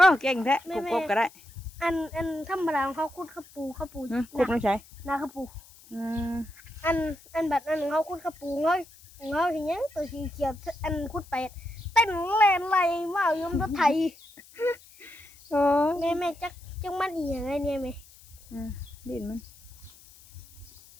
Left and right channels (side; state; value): left; noise; hiss, 23 dB below the sound